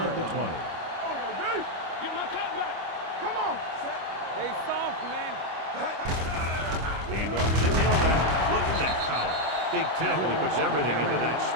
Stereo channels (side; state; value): left; late; 25 ms